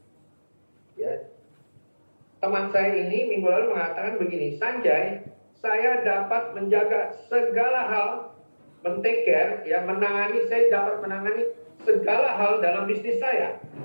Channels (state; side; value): inverted; both; correlation -1.00